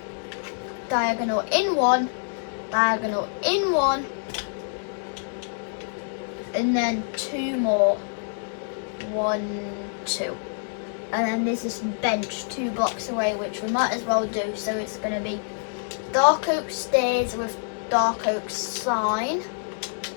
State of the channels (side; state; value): right; silent; digital silence